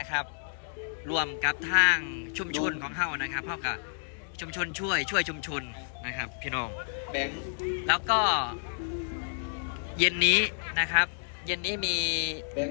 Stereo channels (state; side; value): silent; right; digital silence